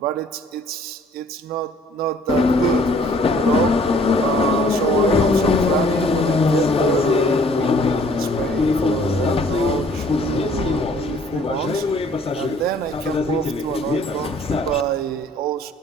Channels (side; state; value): both; normal; correlation 0.57